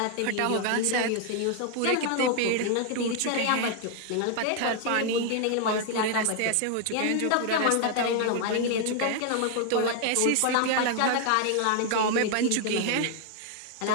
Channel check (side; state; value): both; different; correlation 0.00